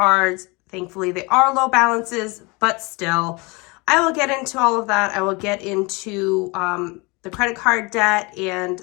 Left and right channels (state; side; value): quieter; right; 26.9 dB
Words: Thankfully, they are low balances, but still, I will get into all of that. I will get into the credit card debt and